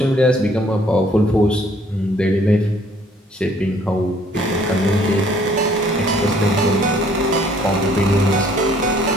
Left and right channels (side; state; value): both; normal; correlation 0.61